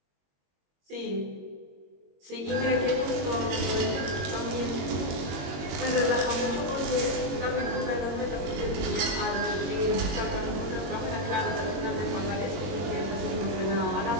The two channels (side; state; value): left; late; 21 ms